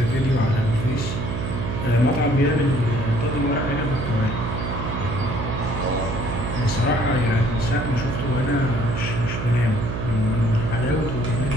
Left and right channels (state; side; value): noise; right; hum, 4 dB below the sound